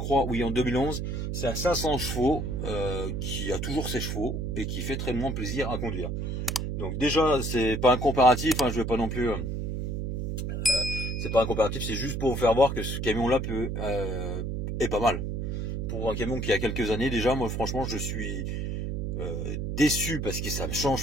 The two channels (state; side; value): noise; right; hum, 2 dB below the sound